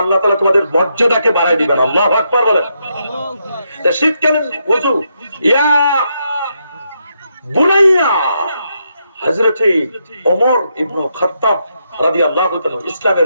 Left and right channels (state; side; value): inverted; both; correlation -0.80